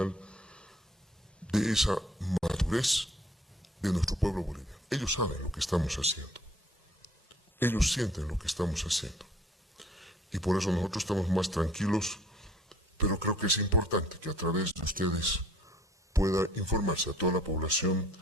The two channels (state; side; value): normal; both; correlation 0.56